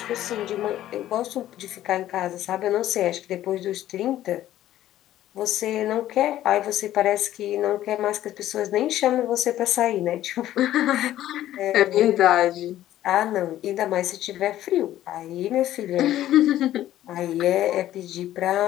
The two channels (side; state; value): right; quieter; 13.2 dB